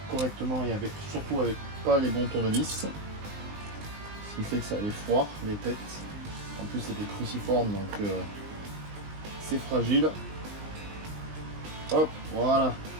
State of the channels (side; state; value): left; late; 19 ms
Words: correctement et surtout avec pas les bons tournevis. Ce qui fait que ça les foire, les têtes. En plus, c'est des cruciformes, donc c'est fragile. Hop, voilà.